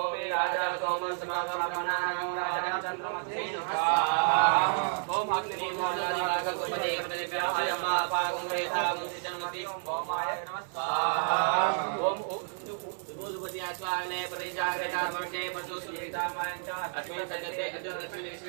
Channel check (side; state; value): left; silent; digital silence